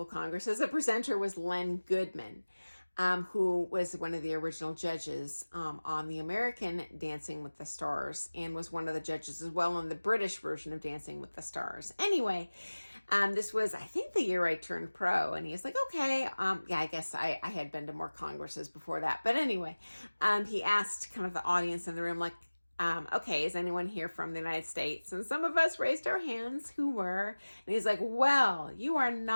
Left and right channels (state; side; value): inverted; both; correlation -1.00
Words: Congresses, a presenter was Len Goodman. Who was one of the original judges on the American Dancing with the Stars and was one of the judges as well on the British version of Dancing with the Stars. Anyway, this was, I think, the year I turned pro, and he's like, okay, yeah, I guess I had been to more congresses before that. But anyway, he asked kind of the audience in the room, like, okay, is anyone here from the United States? And some of us raised our hands who were. And he's like, well, you are